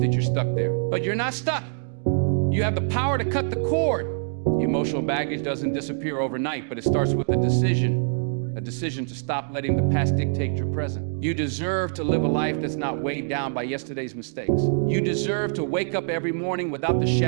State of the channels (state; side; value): silent; left; digital silence